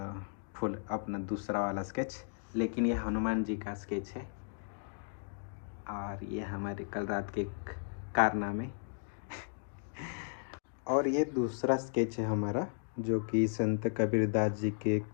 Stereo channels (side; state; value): right; silent; digital silence